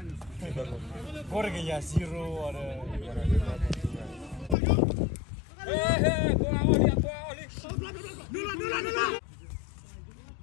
Corre que ya zero ada.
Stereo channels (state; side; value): drops out; right; at 4.5 s